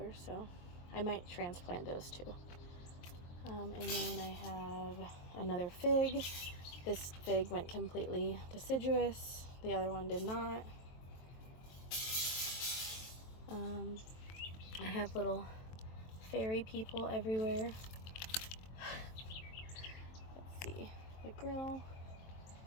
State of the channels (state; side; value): late; right; 23 ms